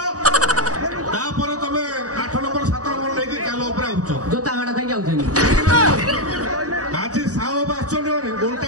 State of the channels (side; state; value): left; late; 0.67 ms